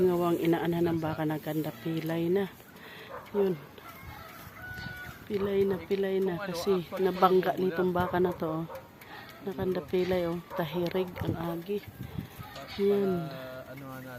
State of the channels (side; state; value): both; identical; correlation 1.00